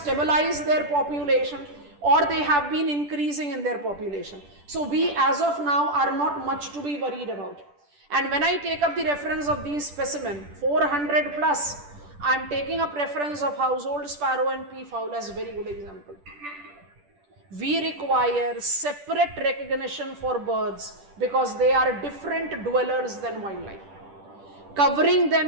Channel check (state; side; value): late; left; 10 ms